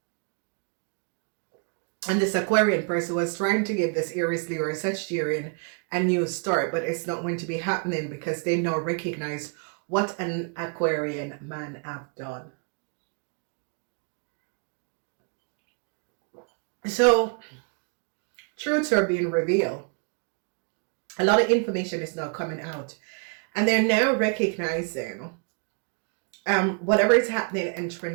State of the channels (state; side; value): quieter; left; 39.8 dB